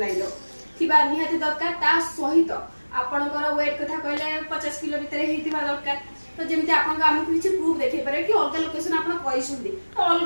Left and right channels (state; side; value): inverted; both; correlation -1.00